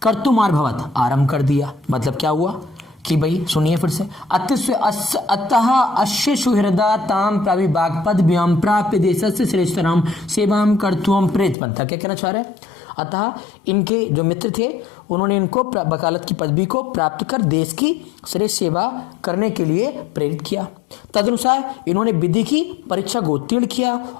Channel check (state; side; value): drops out; right; at 11.6 s